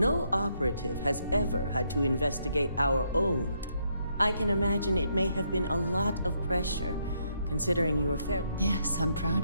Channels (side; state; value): both; inverted; correlation -0.75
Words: operative has ever had to investigate our own. I can imagine it may have been a lot of pressure, considering you were fair. Yes, I'm